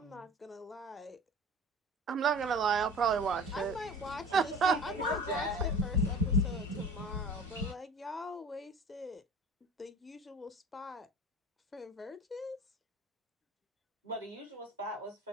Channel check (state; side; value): normal; both; correlation 0.40